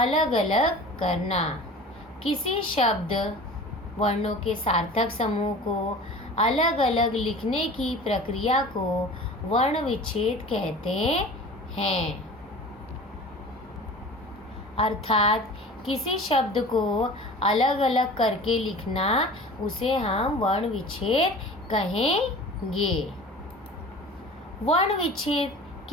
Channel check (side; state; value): both; normal; correlation 0.39